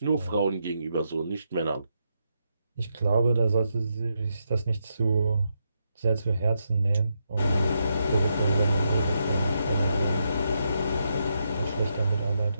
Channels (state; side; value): inverted; both; correlation -0.82